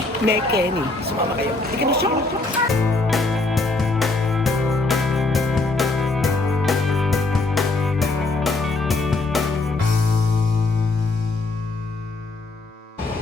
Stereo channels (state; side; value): quieter; right; 3.2 dB